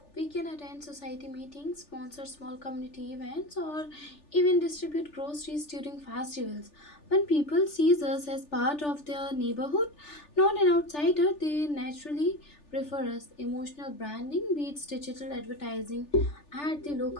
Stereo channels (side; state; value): right; late; 3.4 ms